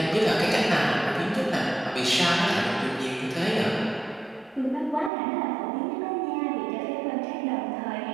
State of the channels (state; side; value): drops out; left; at 5.1 s